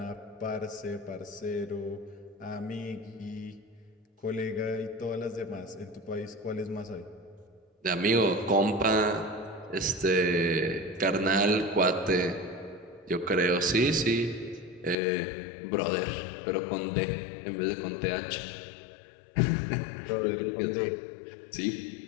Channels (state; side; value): drops out; right; at 15.0 s